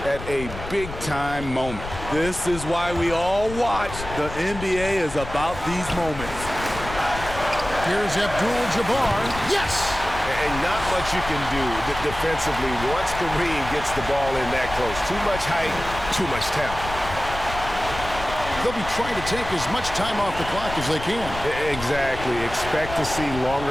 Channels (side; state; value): left; noise; rumble, 10 dB below the sound